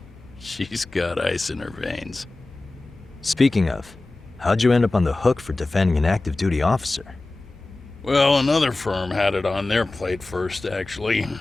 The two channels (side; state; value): right; quieter; 3.1 dB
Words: she's got ice in her veins. Speaking of, how'd you end up on the hook for defending an active duty officer? Well, another firm had it on their plate first, actually.